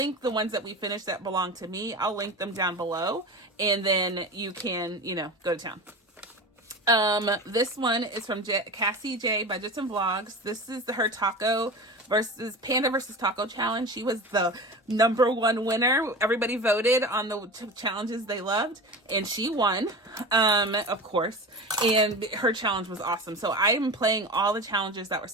the ones that we finished that belong to me. I'll link them down below, and then you can, go to town. This one is from Cassie J Budgets and Vlogs. This is her Panda versus Taco challenge. She was the #1 winner. Everybody voted on the challenges they loved, and she won, of course, and her challenge was awesome. So I am playing all the challenges that were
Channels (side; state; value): both; normal; correlation 0.30